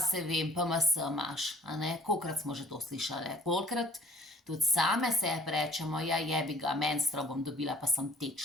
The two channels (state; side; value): normal; both; correlation 0.53